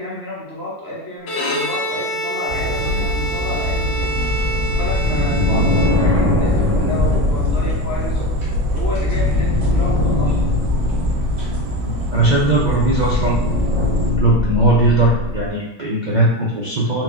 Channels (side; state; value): both; normal; correlation 0.22